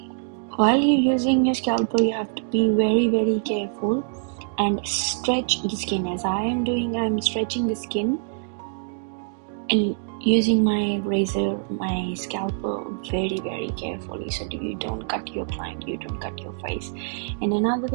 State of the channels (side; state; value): left; silent; digital silence